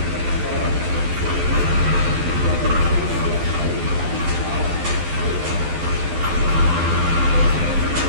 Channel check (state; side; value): late; left; 12 ms